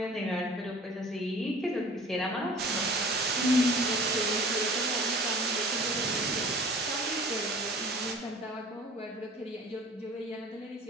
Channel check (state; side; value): normal; both; correlation 0.45